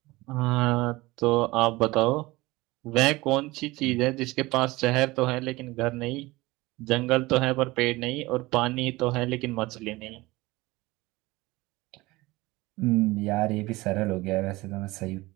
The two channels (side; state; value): left; quieter; 20.6 dB